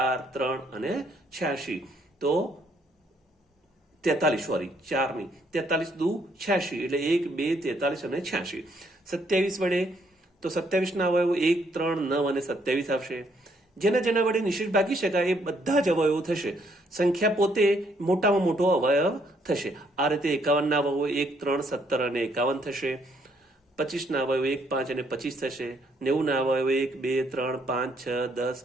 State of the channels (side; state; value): both; normal; correlation 0.70